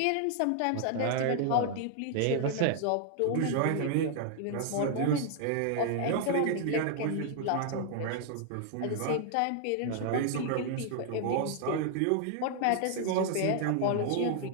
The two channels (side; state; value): both; different; correlation 0.00